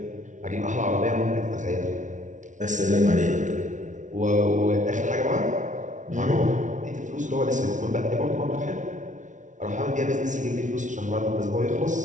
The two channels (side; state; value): left; late; 0.37 ms